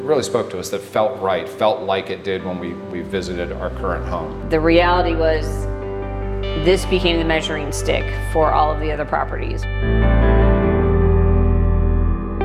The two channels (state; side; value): identical; both; correlation 1.00